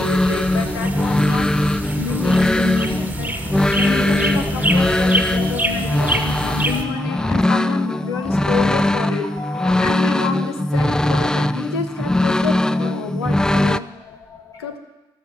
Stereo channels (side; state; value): both; normal; correlation 0.81